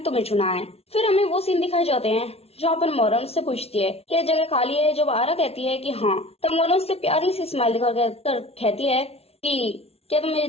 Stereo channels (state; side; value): late; right; 0.30 ms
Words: चुना है। फिर हमें वो सीन दिखाए जाते हैं जहाँ पर मोरन उससे पूछती है कि जगह खाली है। जब आरा कहती है कि हाँ, तब मोरन उससे प्यारी सी स्माइल दिखाकर कहती है कि क्या तुम मेरी